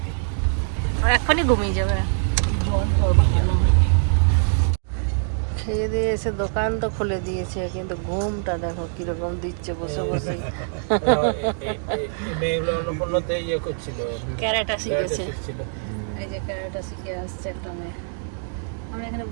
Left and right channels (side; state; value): left; silent; digital silence